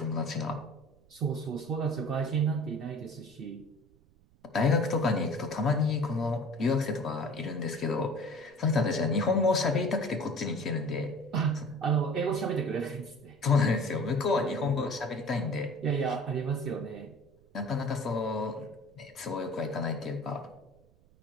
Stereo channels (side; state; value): right; noise; rumble, 30 dB below the sound